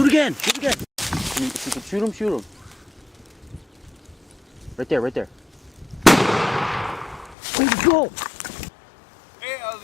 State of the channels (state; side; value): drops out; right; at 7.4 s